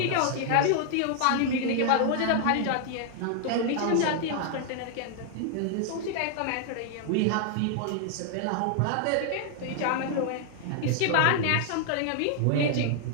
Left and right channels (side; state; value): both; different; correlation 0.00